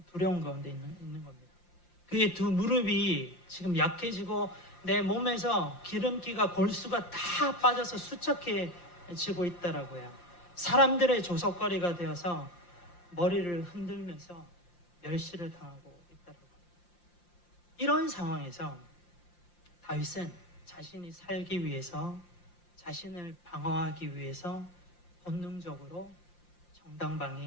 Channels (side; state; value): right; late; 5.7 ms